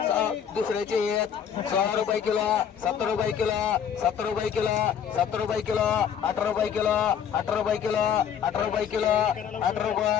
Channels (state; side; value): quieter; right; 8.3 dB